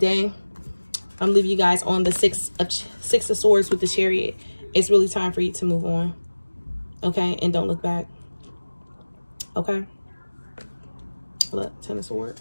I'm leaving you guys on the six of Swords with the Chariot. It's really time for you to move on. Okay? And don't look back. Okay? Look, 10 of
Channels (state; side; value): inverted; both; correlation -1.00